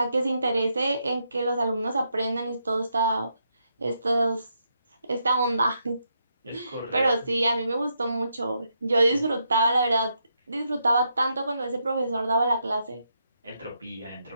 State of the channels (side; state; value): both; inverted; correlation -0.80